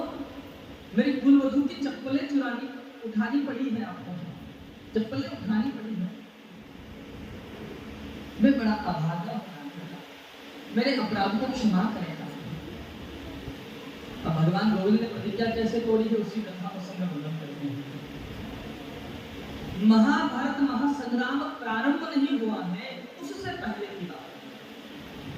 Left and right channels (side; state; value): both; identical; correlation 1.00